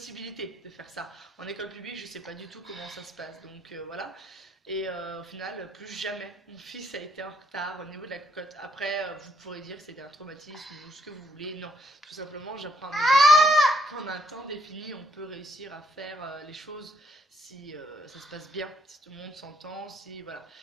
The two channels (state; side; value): normal; both; correlation 0.71